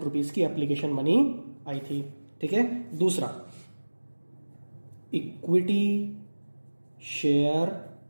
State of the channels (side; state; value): both; inverted; correlation -1.00